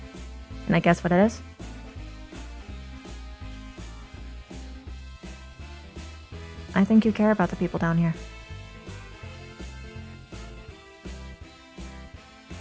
Can I guess what it is? I think you care about the people down here.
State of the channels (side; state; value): both; identical; correlation 1.00